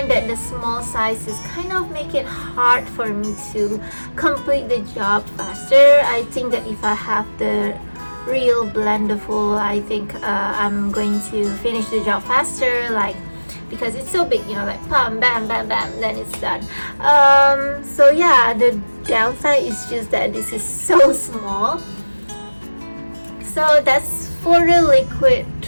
that the small sizes kind of make it hard for me to complete the job faster. I think that if I have the real Blendiful, I think I'm going to finish the job faster. Like because it's so big, you know, like bam, bam, bam, bam, then it's done. So yeah, the downside is just that this is so small. So that's for the liquid.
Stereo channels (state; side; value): inverted; both; correlation -1.00